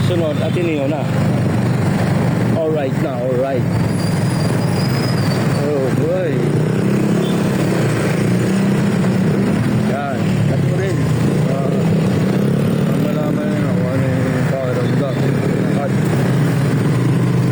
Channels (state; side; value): identical; both; correlation 1.00